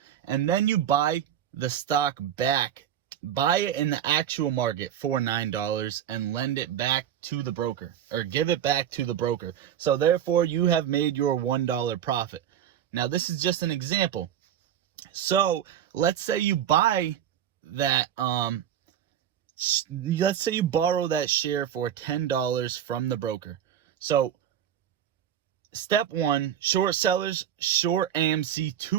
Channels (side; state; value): left; quieter; 10.1 dB